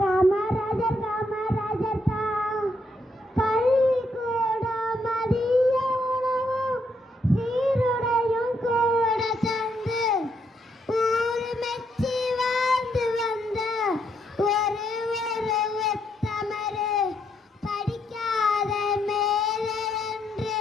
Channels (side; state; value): both; normal; correlation 0.76